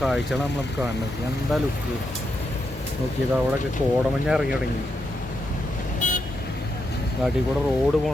കാഴ്ചകളാണ് നമ്മൾ കാണുന്നത്. എന്താ ലുക്ക് നോക്കിയത്. അവിടെയൊക്കെ കോടമഞ്ഞ ഇറങ്ങി തുടങ്ങി. നാട്ടിൽ കൂടെ റോഡ്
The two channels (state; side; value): normal; both; correlation 0.83